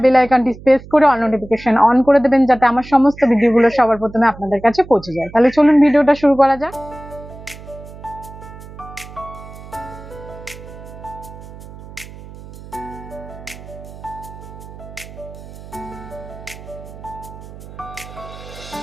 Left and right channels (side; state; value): right; noise; hum, 16 dB below the sound